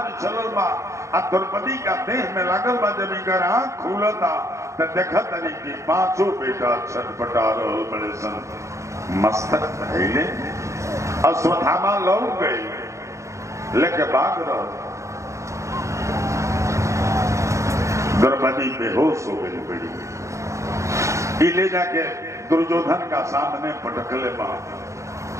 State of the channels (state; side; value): late; left; 0.14 ms